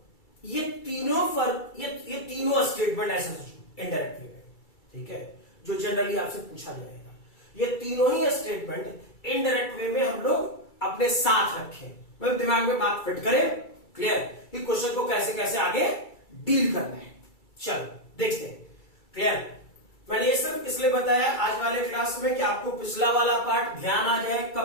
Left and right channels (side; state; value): right; late; 2.3 ms